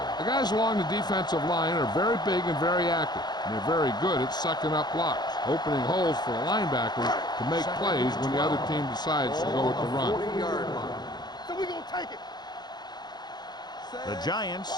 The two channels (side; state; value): right; late; 0.20 ms